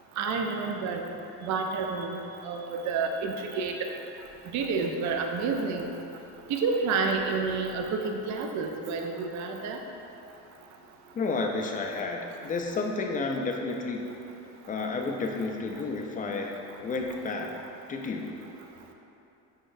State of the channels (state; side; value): normal; both; correlation 0.12